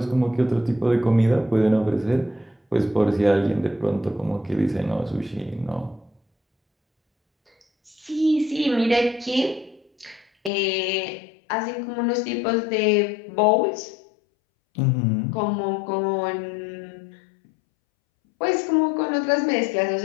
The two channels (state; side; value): drops out; right; at 10.5 s